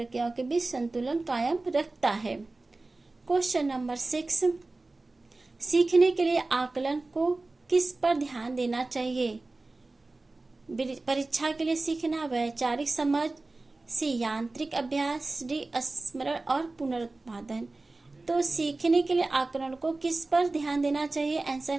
के बीच संतुलन कायम रखता है। क्वेश्चन नंबर 6, सीखने के लिए आकलन को किस पर ध्यान देना चाहिए? परीक्षा के लिए सीखना, वैचारिक समझ, सी यांत्रिक अभ्यास, डी स्मरण और पुनरुत्पादन। तो सीखने के लिए आकलन को किस पर ध्यान देना चाहिए?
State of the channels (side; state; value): left; quieter; 3.2 dB